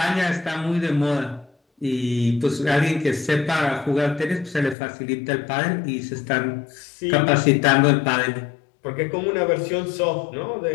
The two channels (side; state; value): right; drops out; at 4.8 s